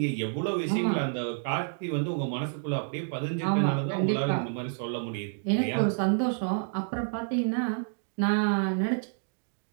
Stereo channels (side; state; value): left; silent; digital silence